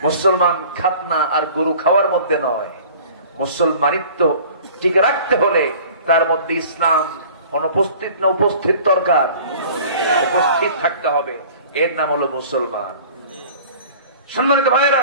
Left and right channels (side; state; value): both; inverted; correlation -0.46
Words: মুসলমান খাতনা আর গরু খাওয়ার মধ্যে নয়, মুসলমানিত্ব টিকে রাখতে হলে তার মধ্যে ইসলাম অনুপস্থিত না উপস্থিত দরকার, উপস্থিত থাকতে হবে। এর নাম হলো মুসলমান। সম্মানিত ভাইয়েরা,